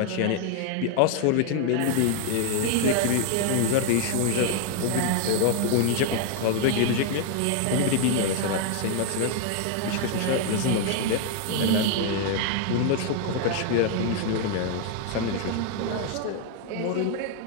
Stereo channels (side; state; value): both; different; correlation 0.00